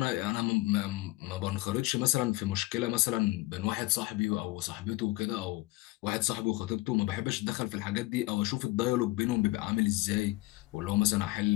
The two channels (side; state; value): right; quieter; 20.4 dB